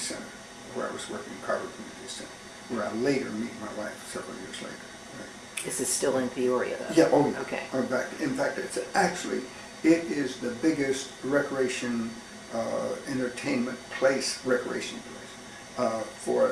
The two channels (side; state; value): both; identical; correlation 1.00